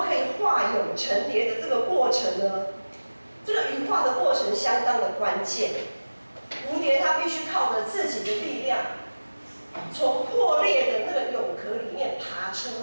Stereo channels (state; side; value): inverted; both; correlation -1.00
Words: 可以化蛹成蝶的这个过程呢？这个羽化的过程相当的关键。蝴蝶它必须靠着自己的力量，从破裂的那个蛹壳里面爬出